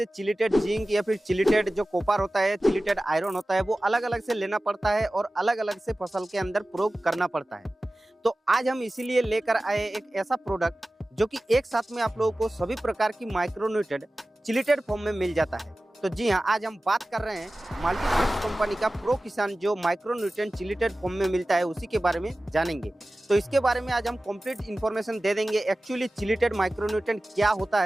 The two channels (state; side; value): normal; both; correlation 0.96